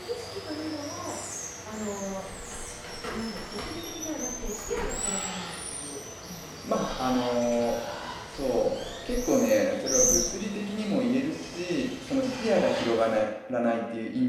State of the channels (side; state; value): both; identical; correlation 1.00